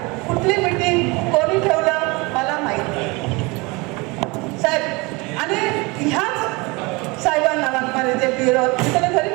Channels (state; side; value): quieter; left; 25.8 dB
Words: कुठली मीटिंग कोणी ठेवलं मला माहिती साहेब. आणि ह्याच साहेबांना वाकमारे जे BLO मी त्याला घरी